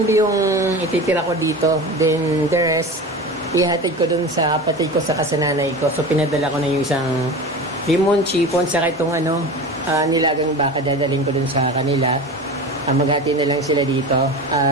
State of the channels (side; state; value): both; normal; correlation 0.30